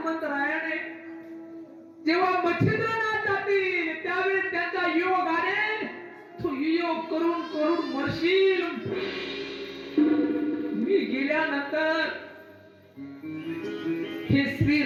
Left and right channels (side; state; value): both; identical; correlation 1.00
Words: जेव्हा मच्छिंद्रनाथ जातील त्यावेळेस त्यांच्या योगाने तू योग करून करून मरशील. मी गेल्यानंतर हे